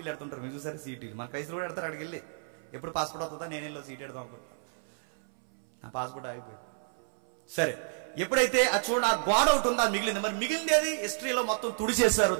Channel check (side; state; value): left; silent; 58 dB below the other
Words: ఎడుతుంటారు. మీరు చూసారు సీటీలు? మన క్రైస్తవులు కూడా ఎడతారు. అక్కడికి వెళ్ళి ఎప్పుడు పాస్పోర్ట్ అవుతుందా, నేను వెళ్ళి సీట్ ఎడదాం అనుకుంటా, నా పాస్పోర్ట్ ఆగిపోయింది. సరే, ఎప్పుడైతే చూడండి ఆ గోడ ఒకటి ఉందా మిగిలింది. మరి మిగిలింది అది హిస్టరీలో మొత్తం తుడిచేశారు,